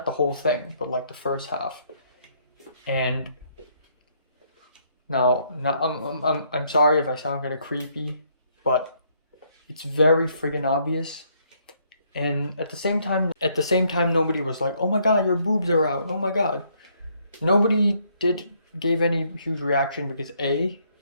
the whole thing, but the first half. And now I'm sorry if I sound kind of creepy, but it's very friggin' obvious. And at the same time, nobody was like, "Oh my God, your boobs are out! Oh my God!" Nobody gave any huge reaction because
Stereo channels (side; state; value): both; inverted; correlation -0.69